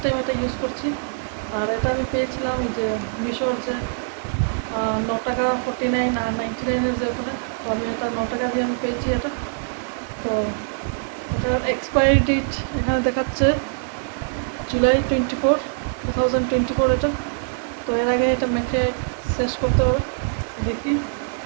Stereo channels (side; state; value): left; silent; digital silence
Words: টাইম এটা ইউজ করছি। আর এটা আমি পেয়েছিলাম এই যে মিশোর যে 9 টাকা 49 আর 99-এর যে ওখানে। তো আমি এটা 9 টাকা দিয়ে আমি পেয়েছি এটা। তো এটার এক্সপায়ারি ডেট এখানে দেখাচ্ছে জুলাই 24, 2024 এটা। তো এর আগে এটা মেখে শেষ করতে হবে। দেখি